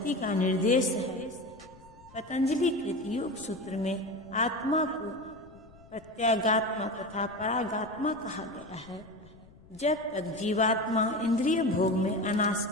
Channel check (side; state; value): left; noise; rumble, 24 dB below the sound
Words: का निर्देश है। पतंजलि कृत योग सूत्र में आत्मा को प्रत्यागात्मा तथा परागात्मा कहा गया है। जब तक जीवात्मा इंद्रिय भोग में